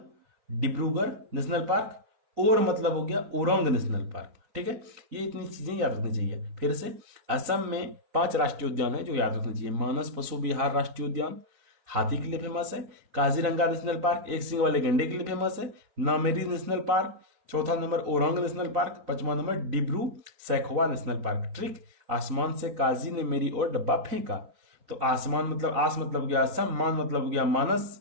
डिब्रूगढ़ नेशनल पार्क, और मतलब हो गया ओरंग नेशनल पार्क। ठीक है, ये इतनी चीजें याद रखनी चाहिए। फिर से असम में 5 राष्ट्रीय उद्यान है जो याद रखनी चाहिए। मानस पशु विहार राष्ट्रीय उद्यान हाथी के लिए फेमस है। काजीरंगा नेशनल पार्क एक सींग वाले गंडे के लिए फेमस है। नामेरी नेशनल पार्क, 4था नंबर ओरंग नेशनल पार्क, 5वां नंबर Dibru Saikhowa national park. Trick, आसमान से काजी ने मेरी ओर डब्बा फेंका। तो आसमान मतलब आस मतलब हो गया असम, मान मतलब हो गया मानस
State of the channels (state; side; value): late; left; 4.0 ms